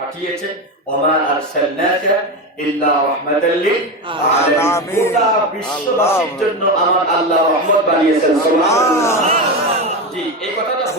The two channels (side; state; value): both; normal; correlation 0.17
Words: ওমা আরসালনাকা ইল্লা রাহমাতাল লিল আলামিন, গোটা বিশ্ববাসীর জন্য আমার আল্লাহ রহমত বানিয়েছেন। সুবহানাল্লাহ। জি, এই কথাটা